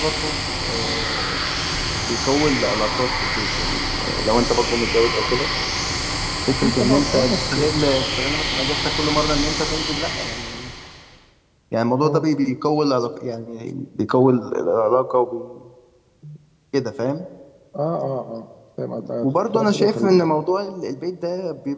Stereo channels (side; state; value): both; identical; correlation 1.00